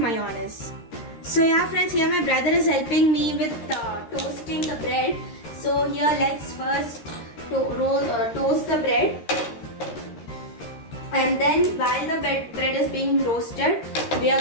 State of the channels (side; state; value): right; late; 13 ms